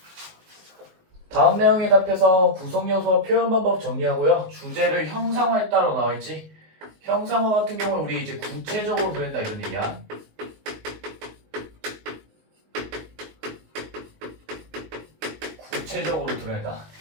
다음 내용에 답해서 구성요소와 표현 방법 정리하고요. 주제를 형상화했다로 나와있지. 형상화 같은 경우는 우리 이제 구체적으로 그린다 이런 얘기야. 구체적으로 드러낸다.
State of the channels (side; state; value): left; late; 19 ms